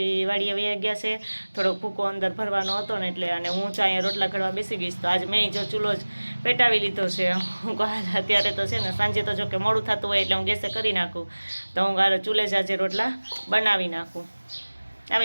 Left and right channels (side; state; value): both; inverted; correlation -1.00